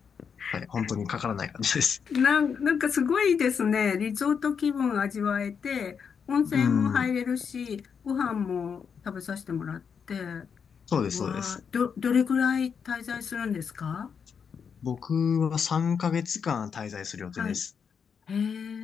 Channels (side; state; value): right; quieter; 6.6 dB